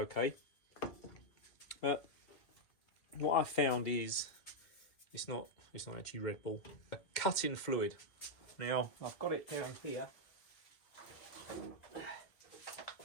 But what I found is it's not actually Red Bull. A cutting fluid. Now I've got it down here.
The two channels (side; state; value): right; late; 2.1 ms